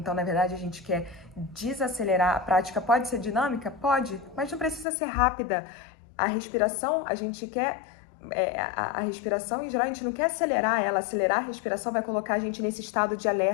na verdade a gente quer desacelerar. A prática pode ser dinâmica? Pode, mas não precisa ser rápida. A respiração, a gente quer, a respiração em geral, a gente não quer acelerar ela. Acelerar a respiração vai colocar a gente nesse estado de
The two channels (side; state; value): right; drops out; at 4.9 s